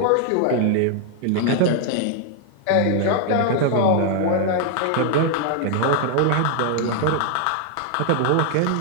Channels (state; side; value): different; both; correlation 0.00